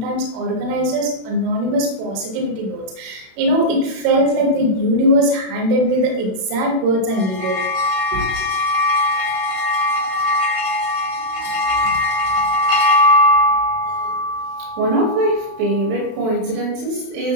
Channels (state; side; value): late; left; 32 ms